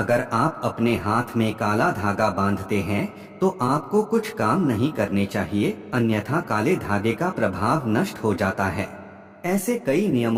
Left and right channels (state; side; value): identical; both; correlation 1.00